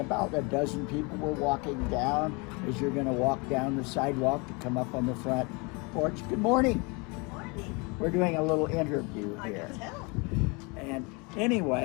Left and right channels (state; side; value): quieter; right; 29.7 dB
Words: a dozen people were walking down as you're going to walk down the sidewalk to come up on the front porch. Good morning. Good morning. We're doing a little interview here. I can tell. And